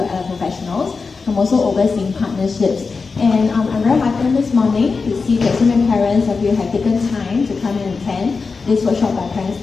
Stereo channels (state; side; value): quieter; right; 4.6 dB